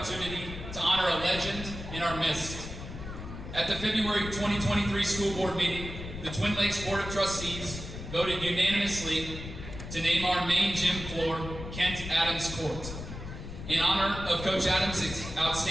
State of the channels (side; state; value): left; noise; rumble, 9 dB below the sound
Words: to honor a legend in our midst. At the February 2023 school board meeting, the Twin Lakes Board of Trustees voted unanimously to name our main gym floor Kent Adams Court, in honor of Coach Adams'